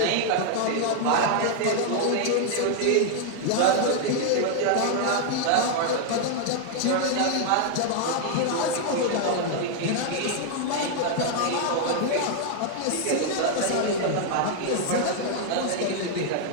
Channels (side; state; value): both; different; correlation 0.00